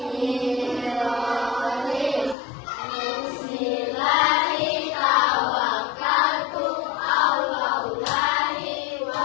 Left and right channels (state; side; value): drops out; right; at 2.4 s